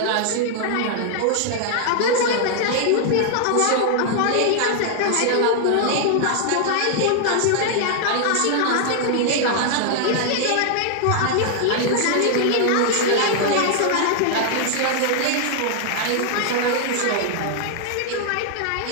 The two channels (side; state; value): both; different; correlation -0.01